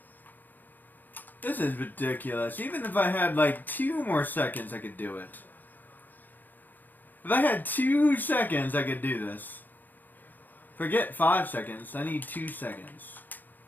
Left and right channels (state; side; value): late; right; 0.087 ms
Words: This is ridiculous. Even if I had like 2 more seconds, I could do it. If I had 2 seconds, I could do this. Forget 5 seconds. I need 2 seconds.